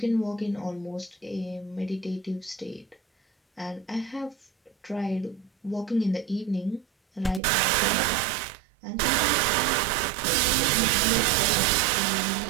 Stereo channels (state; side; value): drops out; left; at 7.4 s